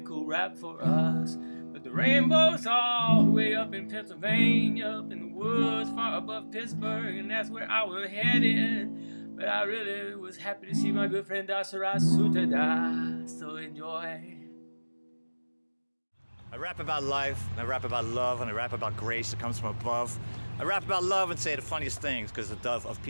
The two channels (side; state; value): both; inverted; correlation -1.00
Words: cool rap for us. But the rainbow's all the way up in Pennsylvania, up in the woods far above Pittsburgh, and that's where I was headed. But I really was happy to see my good friend Dasarath Sutadas, so enjoy. I rap about life, and I rap about love, and I rap about grace that comes from above. I rap about love and say the funniest things, because the dove of